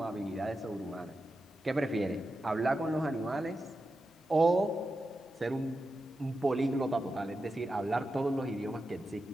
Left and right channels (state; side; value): normal; both; correlation 0.90